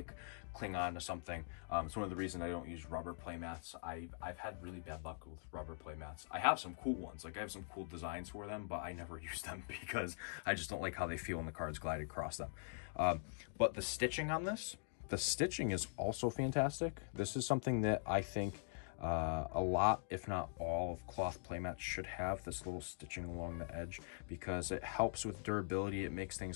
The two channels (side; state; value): right; silent; digital silence